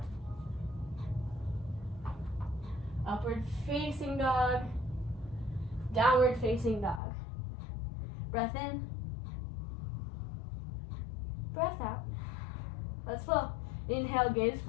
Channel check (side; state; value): right; drops out; at 7.0 s